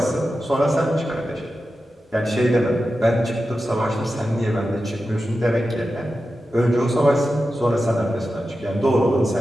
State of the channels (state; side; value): normal; both; correlation 0.92